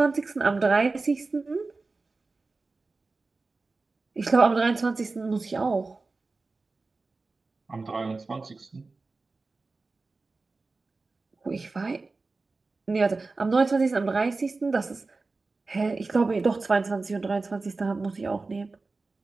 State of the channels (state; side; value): quieter; left; 3.7 dB